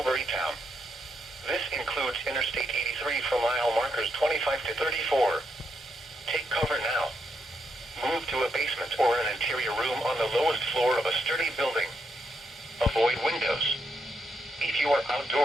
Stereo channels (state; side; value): normal; both; correlation 0.79